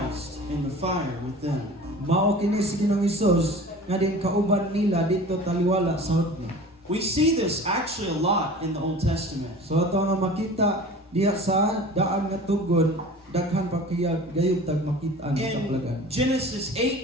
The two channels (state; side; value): normal; both; correlation 0.40